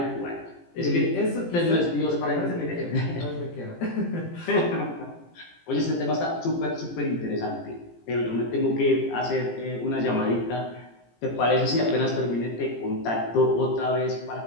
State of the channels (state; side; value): late; right; 17 ms